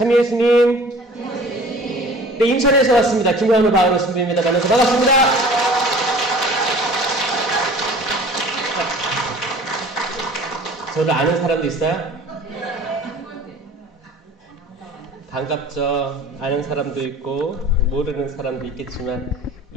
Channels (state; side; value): normal; both; correlation 0.46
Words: 예수님. 네, 인천에서 왔습니다. 김현우 바오로 신부입니다. 만나서 반갑습니다. 저를 아는 사람도 있어요? 반갑죠. 아는 사람도 있고 모르는 사람도 있겠지만